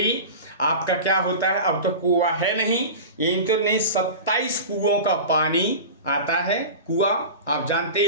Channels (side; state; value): both; inverted; correlation -0.31